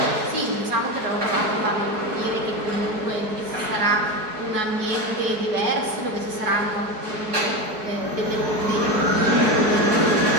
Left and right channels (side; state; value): left; late; 4.6 ms